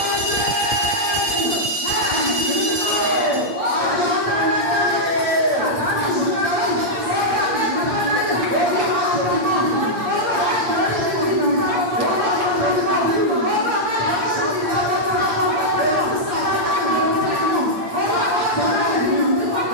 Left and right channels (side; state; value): left; late; 8.7 ms